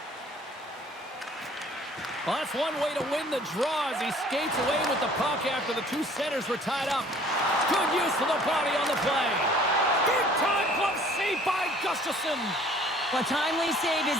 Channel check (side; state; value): both; normal; correlation 0.53